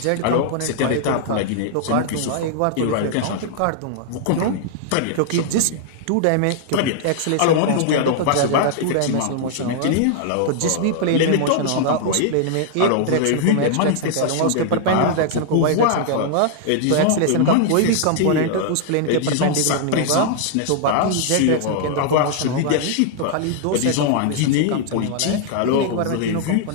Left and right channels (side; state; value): both; different; correlation -0.01